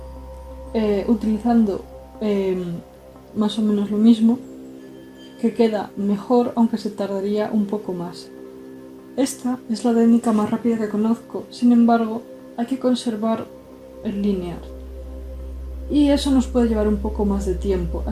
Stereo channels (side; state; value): both; identical; correlation 1.00